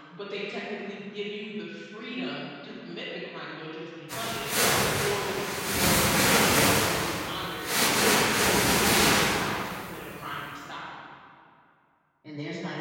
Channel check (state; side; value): identical; both; correlation 1.00